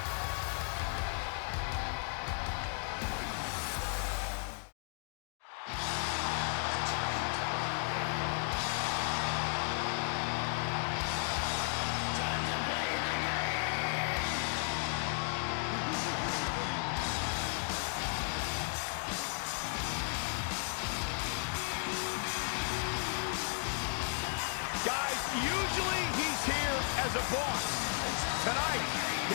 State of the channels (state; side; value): silent; right; 55 dB below the other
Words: Usually he's here as a boss. Tonight,